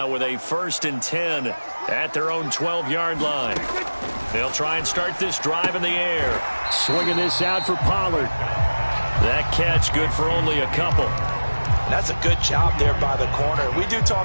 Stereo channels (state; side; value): inverted; both; correlation -1.00